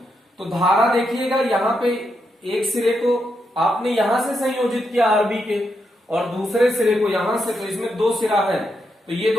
तो धारा देखिएगा, यहां पे एक सिरे को आपने यहां से संयोजित किया आरबी के, और दूसरे सिरे को यहां से, तो इसमें 2 सिरा है, तो ये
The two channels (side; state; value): both; normal; correlation 0.82